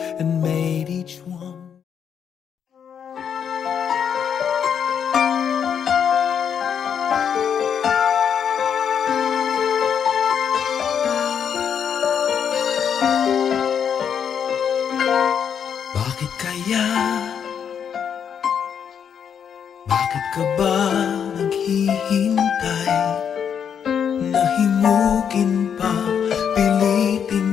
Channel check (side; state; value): right; quieter; 7.8 dB